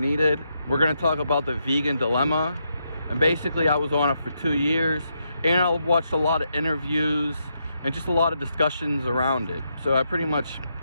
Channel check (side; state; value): both; inverted; correlation -0.80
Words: We're going to talk about the vegan dilemma, and basically I was on it for 2 years, and I watched a lot of interviews and just a lot of discussions around it. So I